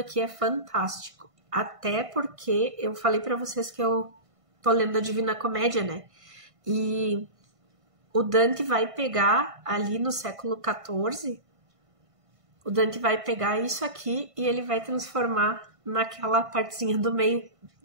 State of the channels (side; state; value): left; late; 1.5 ms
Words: é fantástico, até porque eu falei para vocês que eu tô lendo a Divina Comédia, né? E o Dante vai pegar ali no século XIV, o Dante vai pegar isso aqui e ele vai transformar naquela partezinha do meio